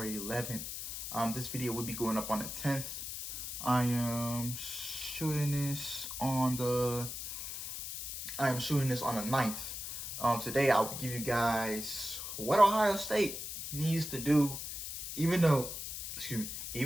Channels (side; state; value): left; noise; hiss, 6 dB below the sound